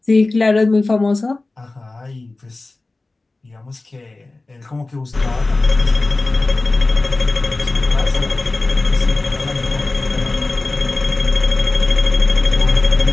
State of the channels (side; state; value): right; quieter; 3.2 dB